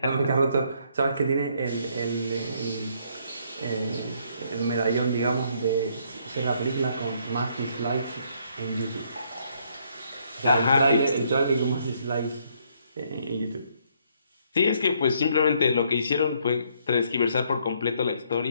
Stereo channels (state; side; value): inverted; both; correlation -0.69